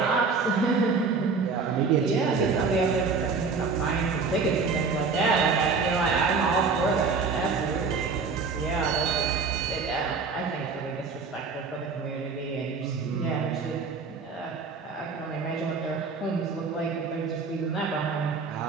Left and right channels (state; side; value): quieter; left; 4.8 dB